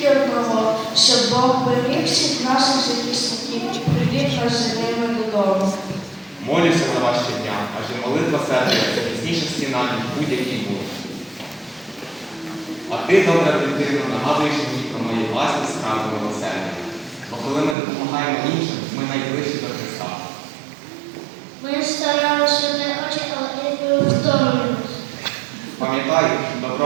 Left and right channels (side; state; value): left; drops out; at 17.8 s